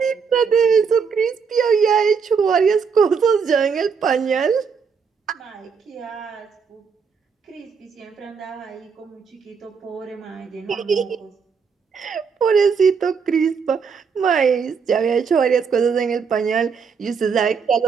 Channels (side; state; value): left; quieter; 6.0 dB